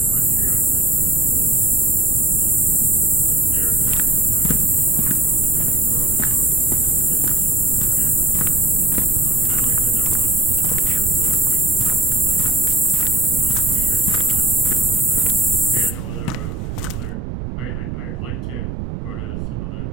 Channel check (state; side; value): noise; right; rumble, 6 dB below the sound